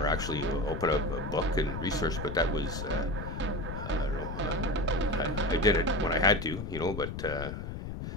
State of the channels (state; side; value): noise; left; rumble, 6 dB below the sound